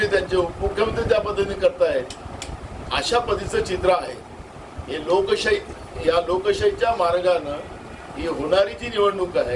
त्यांचे उपमुख्यमंत्री त्या पद्धतीने करतायत. अशा पद्धतीचं चित्र आहे. हे लोकशाही, या लोकशाहीच्या मार्गानं ही होणारी जी निवडणूक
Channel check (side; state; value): both; identical; correlation 1.00